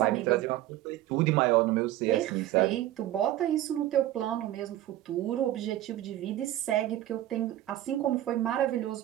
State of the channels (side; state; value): left; quieter; 14.0 dB